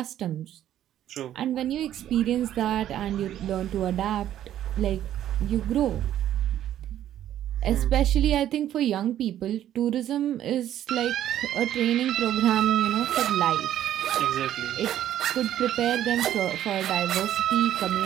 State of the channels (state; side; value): quieter; left; 11.7 dB